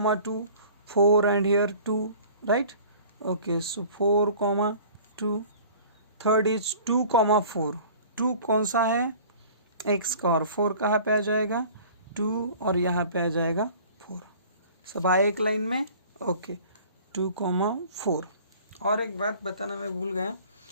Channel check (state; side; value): inverted; both; correlation -0.47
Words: 4 and here 2, right, okay. So 4,2, third is 2,4, 2 कौन सा है, x का, और 4 कहाँ पे आ जाएगा, 2, और यहाँ पे आ जाएगा 4, सब आए एक लाइन में, ओके। 2,4। और एक बात बताना मैं भूल गया,